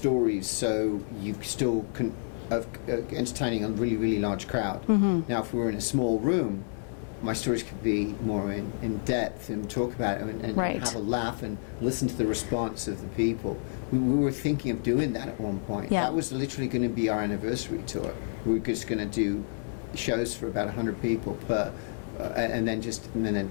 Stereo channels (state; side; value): silent; right; digital silence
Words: so you still can entertaining a really, really large crowd. Now, if we were in a small room, my stories could be more in depth and talk about it and Right. have a laugh and listen to the response of the people. We were thinking of doing that at one point. Yeah. That was literally going to be our anniversary tour. We were just going to do shows for about 100 people per, and then